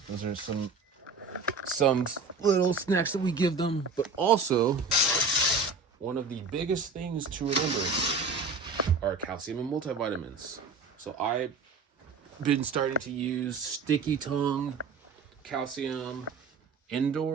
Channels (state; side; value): quieter; left; 4.2 dB